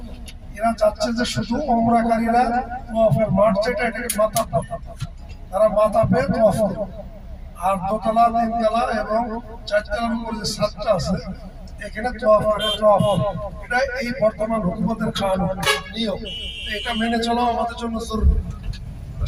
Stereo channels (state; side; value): identical; both; correlation 1.00